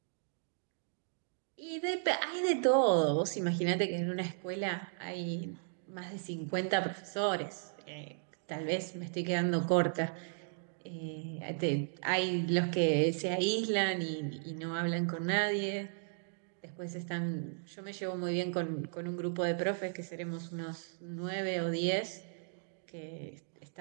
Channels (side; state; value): left; silent; digital silence